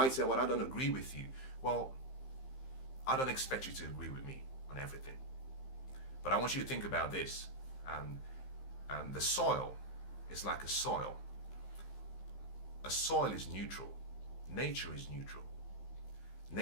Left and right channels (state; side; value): late; right; 15 ms